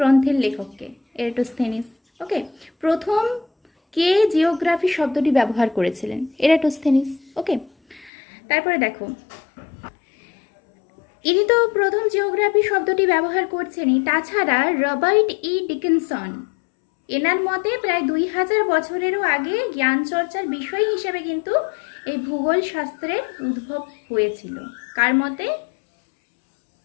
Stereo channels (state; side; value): drops out; right; at 8.1 s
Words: লেখককে? এরাটোস্থেনিস। ওকে। প্রথম কে জিওগ্রাফি শব্দটি ব্যবহার করেছিলেন? এরাটোস্থেনিস। ওকে। তারপরে দেখো, ইনি তো প্রথম জিওগ্রাফি শব্দটি ব্যবহার করছেনই, তাছাড়া রবার্ট ই ডিকিনসন, এনার মতে প্রায় 2000 বছরেরও আগে জ্ঞান চর্চার বিষয় হিসেবে কিন্তু এই ভূগোল শাস্ত্রের উদ্ভব হয়েছিল। কার মতে?